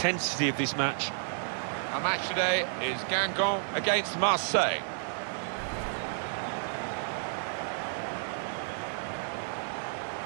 of this match. Our match today is Guingamp against Marseille.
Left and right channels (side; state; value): left; silent; digital silence